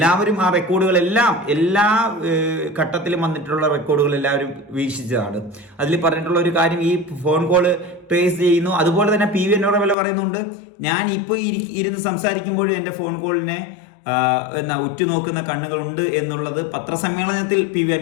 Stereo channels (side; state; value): right; drops out; at 10.0 s